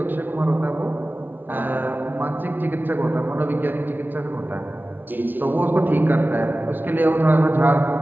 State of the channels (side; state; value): left; late; 0.091 ms